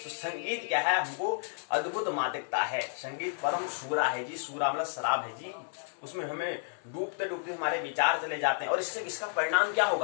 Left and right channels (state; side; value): silent; right; digital silence